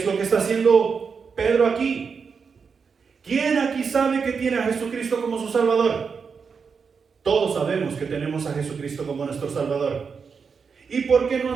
lo que está haciendo Pedro aquí. ¿Quién aquí sabe que tiene a Jesucristo como su Salvador? Todos sabemos que tenemos a Jesucristo como nuestro Salvador. ¿Y por qué no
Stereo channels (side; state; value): left; quieter; 5.7 dB